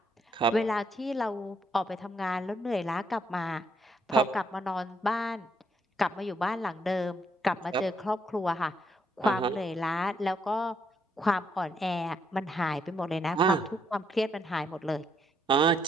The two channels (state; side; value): normal; both; correlation 0.73